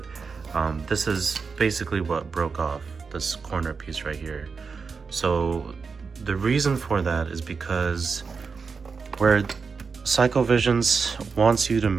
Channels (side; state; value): left; quieter; 5.1 dB